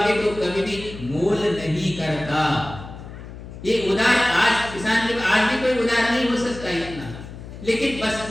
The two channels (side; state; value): left; noise; hum, 13 dB below the sound